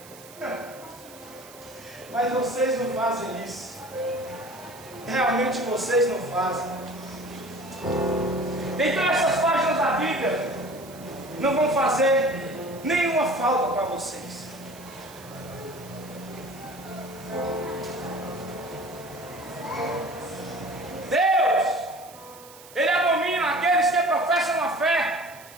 Mas vocês não fazem isso. Realmente vocês não fazem. Então essas páginas da Bíblia não vão fazer nenhuma falta para vocês. Deus, Ele abomina aqueles que professam a fé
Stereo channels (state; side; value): noise; right; hiss, 20 dB below the sound